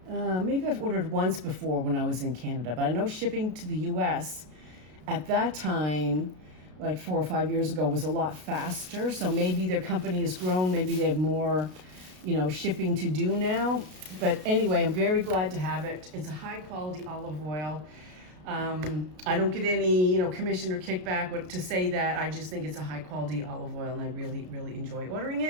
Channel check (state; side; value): late; left; 33 ms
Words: maybe I've ordered once before when I was in Canada, but I know shipping to the US at that time, like 4 or 5 years ago, was a lot faster. So maybe their company has grown, maybe they have more, you know, shipping to do now. But anyway, I'm very glad to have it. It's a high quality olive oil. I don't get any, you know, commission or kickback to say that. I just think it's a high quality olive oil, and I really, really enjoy ordering